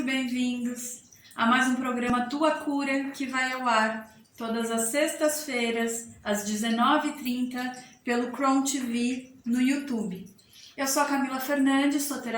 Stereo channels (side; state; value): both; identical; correlation 1.00